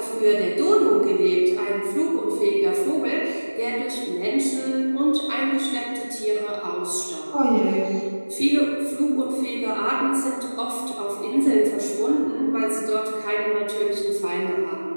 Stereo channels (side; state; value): both; inverted; correlation -1.00